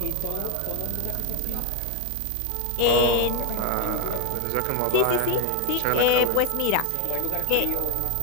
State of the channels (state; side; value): different; both; correlation 0.01